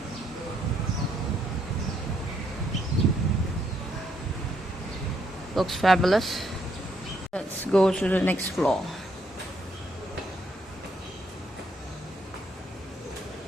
Looks fabulous. Let's go to the next floor.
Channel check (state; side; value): normal; both; correlation 0.73